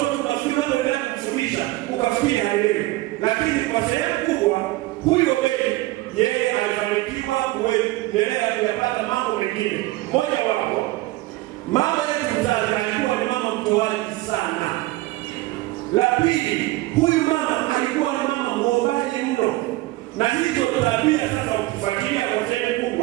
tunafikiri wanaendelea kufundisha ukafikiri haelewi, lakini kwa sehemu kubwa huyo Obedi yeye alifanikiwa kuendelea kuyapata mambo mengine. Moja wapo, mama yetu mzazi alikuwa ni mama mtoaji sana. La pili, huyu mama alikuwa ni mama muombaji mno. Na hizo tabia sasa ukifuatilia kwa sehemu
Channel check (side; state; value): left; quieter; 19.2 dB